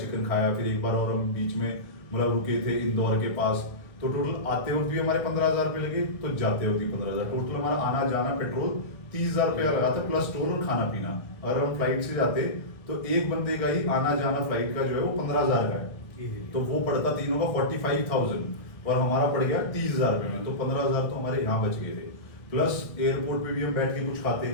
खाया। फिर एक बार और हम बीच में मतलब रुके थे इंदौर के पास, तो टोटल आते वक्त भी हमारे 15,000 रुपये लगे, तो जाते वक्त भी 15,000। टोटल हमारा आना जाना पेट्रोल 30,000 रुपये लगा था, प्लस टोल और खाना पीना। अगर हम फ्लाइट से जाते तो एक बंदे का ही आना जाना फ्लाइट का जो है वो 15,000 का है, तो वो पड़ता तीनों का 45,000, और हमारा पड़ गया 30,000 रुपये में। तो 15,000 तो हमारे यहाँ बच गए थे। प्लस एयरपोर्ट पे भी हम बैठ के कुछ खाते,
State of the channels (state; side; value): late; right; 1.5 ms